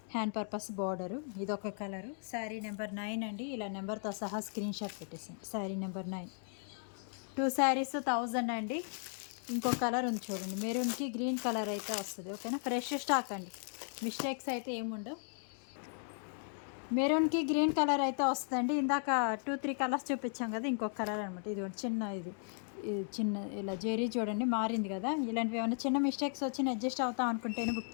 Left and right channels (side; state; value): right; silent; 54 dB below the other